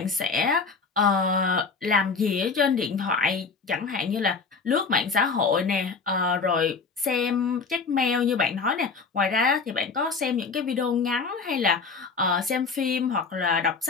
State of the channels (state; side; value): quieter; right; 4.7 dB